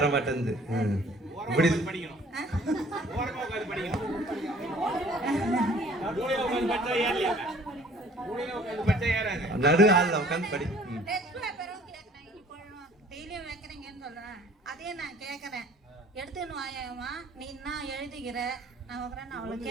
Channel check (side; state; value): both; normal; correlation 0.54